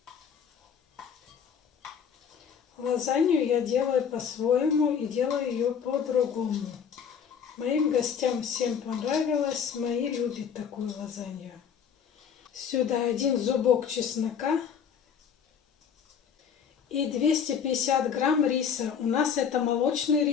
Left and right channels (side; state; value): right; quieter; 7.3 dB